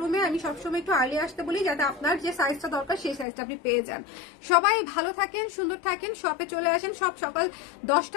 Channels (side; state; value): right; drops out; at 3.2 s